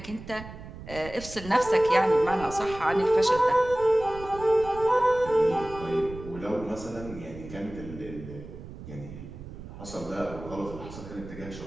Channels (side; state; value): right; noise; rumble, 13 dB below the sound